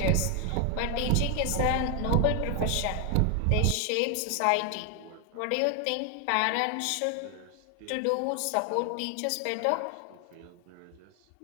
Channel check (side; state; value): both; different; correlation 0.01